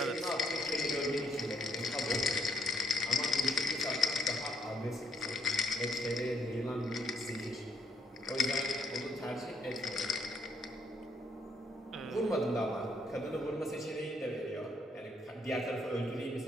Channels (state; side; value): normal; both; correlation 0.72